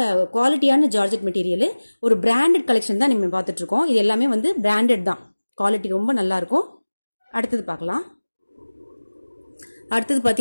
குவாலிட்டியான ஜார்ஜெட் மெட்டீரியல். ஒரு பிராண்டட் கலெக்ஷன் தான் நம்ம பார்த்துட்டு இருக்கோம். இது எல்லாமே வந்து பிராண்டட் தான். குவாலிட்டி ரொம்ப நல்லா இருக்கும். அடுத்தது பார்க்கலாம். அடுத்தது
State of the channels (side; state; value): both; inverted; correlation -1.00